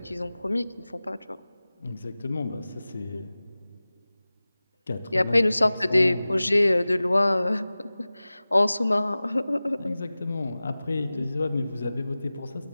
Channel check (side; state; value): both; inverted; correlation -0.97